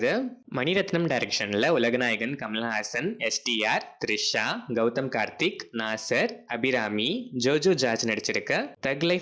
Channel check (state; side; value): identical; both; correlation 1.00